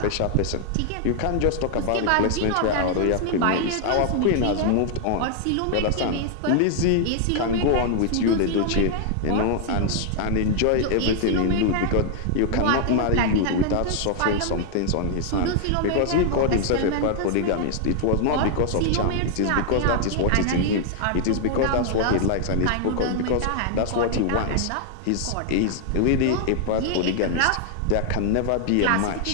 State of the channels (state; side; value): different; both; correlation 0.00